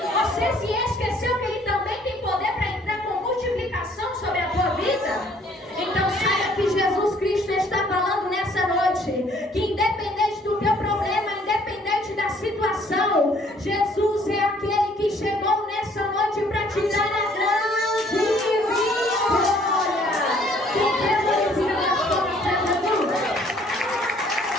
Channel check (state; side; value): normal; both; correlation 0.60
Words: se esqueceu que ele também tem poder para entrar com multiplicação sobre a tua vida? Então saiba que Jesus Cristo está falando nessa noite, que independente do teu problema, independente da situação, Jesus é aquele que chegou nessa noite para te dar a grande vitória. Quem quer glorificar as coisas de Jesus?